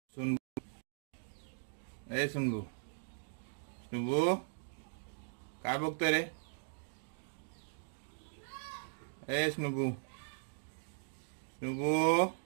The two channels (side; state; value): left; silent; digital silence